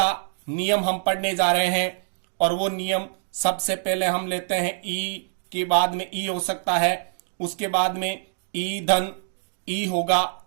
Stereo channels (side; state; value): left; silent; digital silence